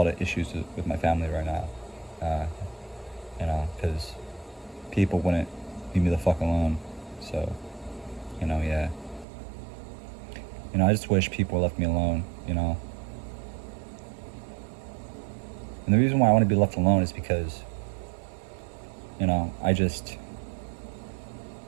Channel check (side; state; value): left; drops out; at 9.2 s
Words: of issues with my family right now. Because people wouldn't leave me the fuck alone. So, yeah. I just wish people left me alone, And the reason why I want to be left alone is because, I just